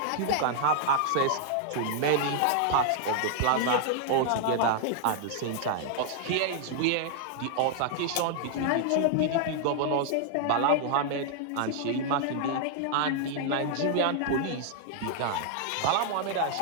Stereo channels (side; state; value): both; different; correlation 0.00